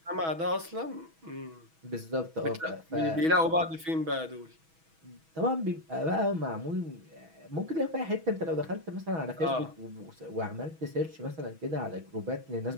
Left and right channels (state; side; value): late; left; 6.2 ms